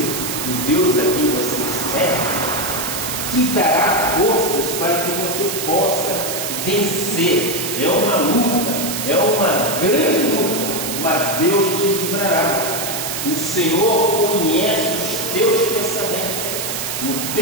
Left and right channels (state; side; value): noise; right; hiss, 4 dB below the sound